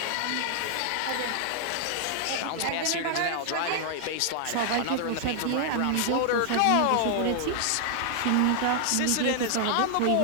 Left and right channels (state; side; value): different; both; correlation 0.00